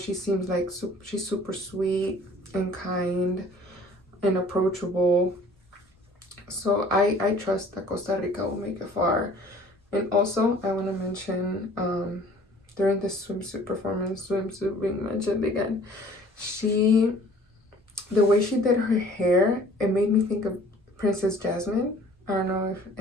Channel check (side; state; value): both; normal; correlation 0.52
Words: seems like she's super sweet and kind and approachable. So I trust that Costa Rica will make it far. And also, I want to mention, during the swimsuit performance, swimsuit being mentioned again, the way she did her hair, it made me think of Princess Jasmine. I don't know if